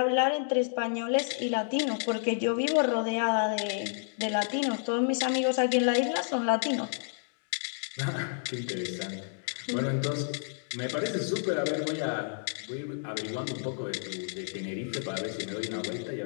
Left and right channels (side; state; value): right; silent; digital silence